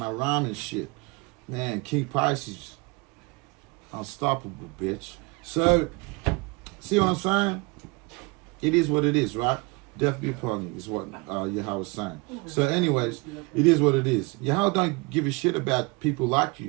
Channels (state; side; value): quieter; left; 27.2 dB